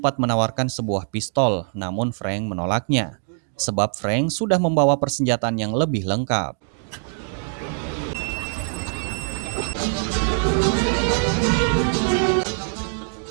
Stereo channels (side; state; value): left; silent; 55 dB below the other